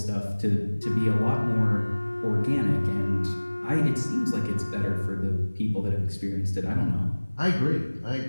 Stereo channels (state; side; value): inverted; both; correlation -1.00